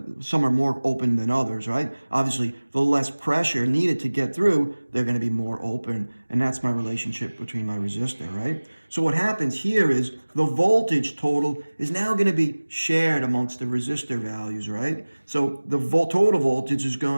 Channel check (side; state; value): both; inverted; correlation -1.00